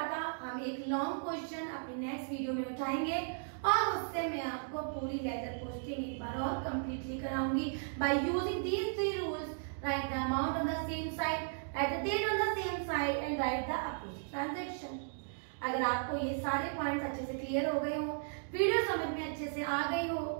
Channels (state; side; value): silent; left; digital silence